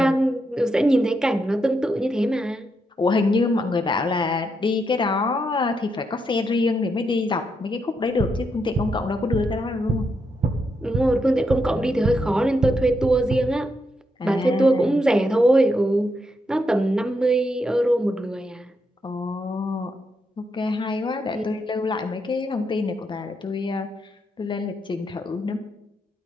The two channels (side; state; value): both; normal; correlation 0.81